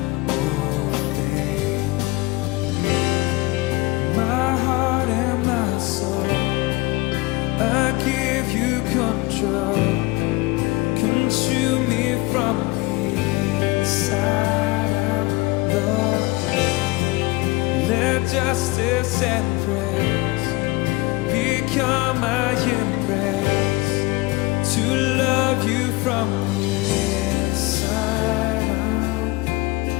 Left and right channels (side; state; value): right; quieter; 22.4 dB